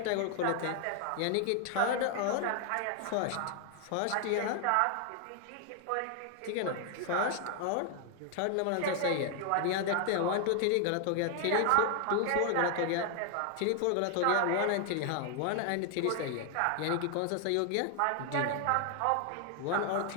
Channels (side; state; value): both; different; correlation 0.00